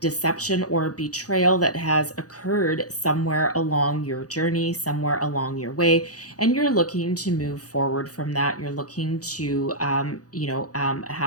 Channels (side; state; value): right; late; 0.67 ms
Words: or betrayal that has occurred somewhere along your journey, somewhere along your way, and you're looking to move forward from that. You're looking to,